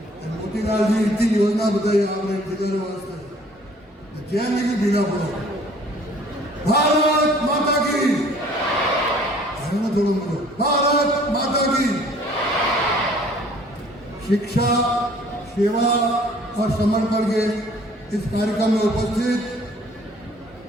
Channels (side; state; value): both; normal; correlation 0.55